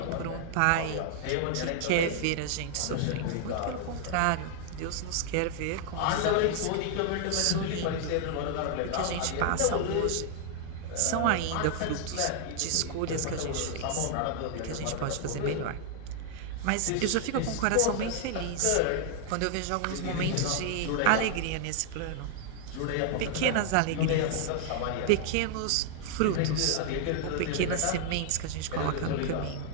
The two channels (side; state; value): both; different; correlation 0.00